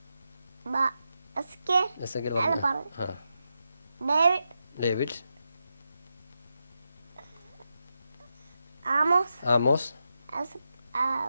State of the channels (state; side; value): inverted; both; correlation -0.87